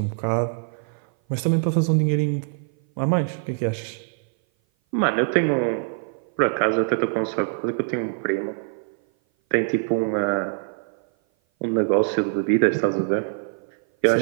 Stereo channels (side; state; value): left; silent; 57 dB below the other